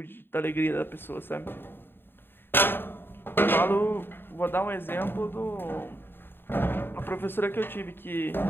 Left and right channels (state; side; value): late; right; 0.10 ms